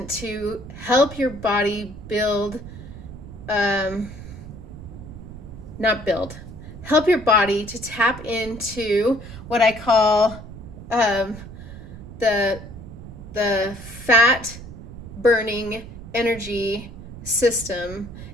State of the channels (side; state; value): right; noise; rumble, 13 dB below the sound